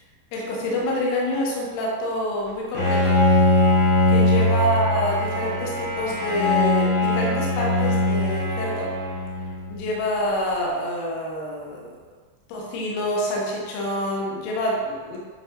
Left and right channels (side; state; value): right; late; 26 ms